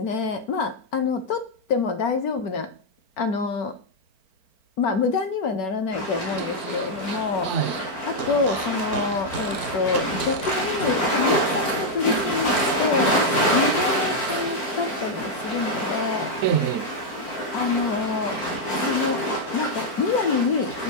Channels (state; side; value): late; right; 4.4 ms